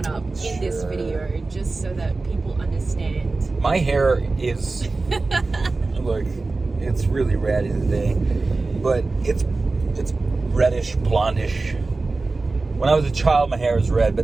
up in this video just so that people understand. My hair is look, it's really ratty today, but it's reddish, blondish. When I was a child, my hair was red,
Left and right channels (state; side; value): quieter; left; 3.6 dB